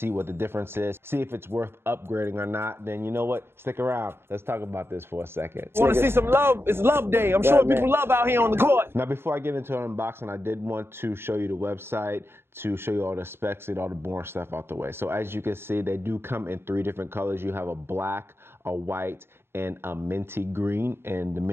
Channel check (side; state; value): left; late; 0.11 ms